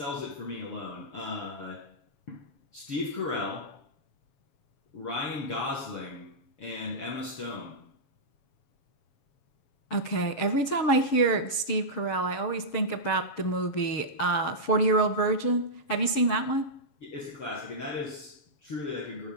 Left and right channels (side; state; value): right; late; 7.2 ms